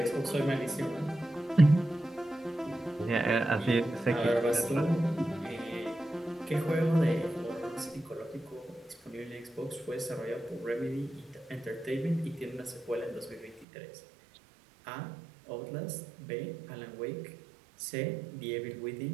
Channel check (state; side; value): drops out; left; at 13.7 s